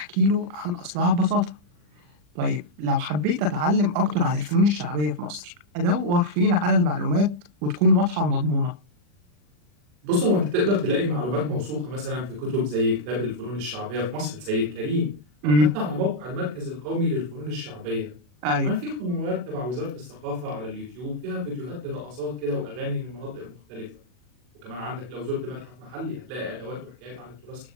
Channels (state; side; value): late; left; 40 ms